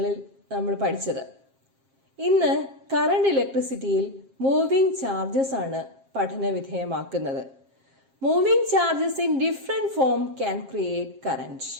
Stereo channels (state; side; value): late; left; 7.5 ms